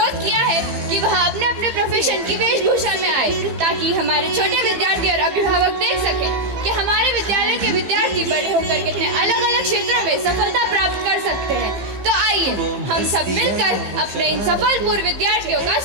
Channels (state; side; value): late; left; 15 ms